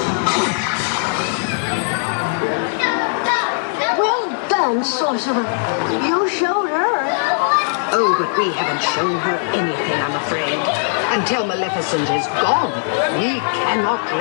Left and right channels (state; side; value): silent; right; digital silence